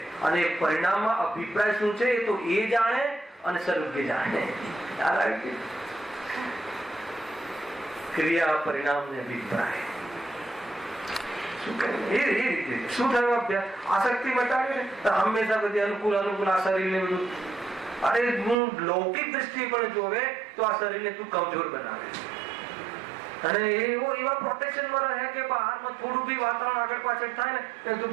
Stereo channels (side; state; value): left; drops out; at 18.6 s